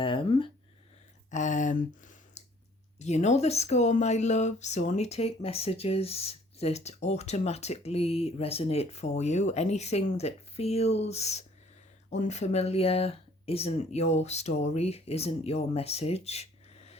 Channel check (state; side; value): normal; both; correlation 0.58